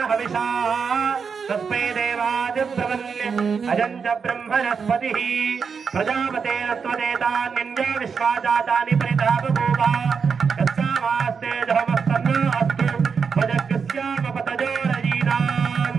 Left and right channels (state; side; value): quieter; left; 5.9 dB